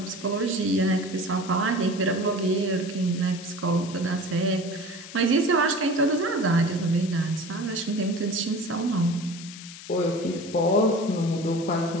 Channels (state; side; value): noise; left; hiss, 15 dB below the sound